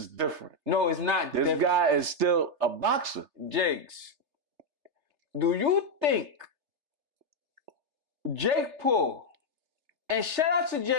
different. No, it's not This guy is still a boxer. Jiggs, do you think Jake Paul, and shout out to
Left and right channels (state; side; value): late; left; 3.3 ms